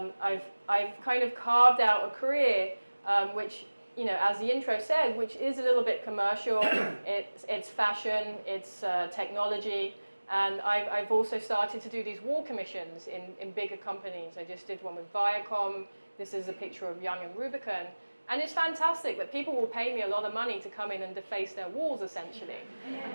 kind of carved out a career which, you know, as the intro said, which is a little bit commercial. It's fashion, it's technology, and I've also started to do these wall commissions in bigger companies. I just did one with Viacom. This is a picture of Young and Rubicon. And it's fantastic that people will pay me a lot of money to come in and deface their walls, essentially.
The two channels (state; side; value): inverted; both; correlation -1.00